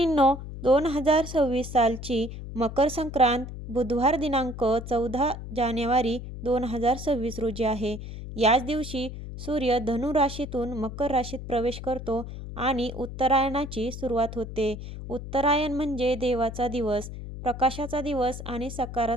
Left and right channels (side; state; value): left; noise; hum, 10 dB below the sound